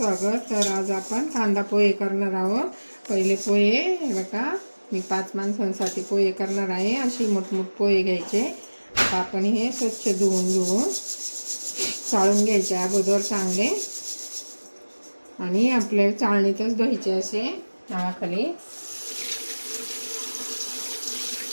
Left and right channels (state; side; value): inverted; both; correlation -1.00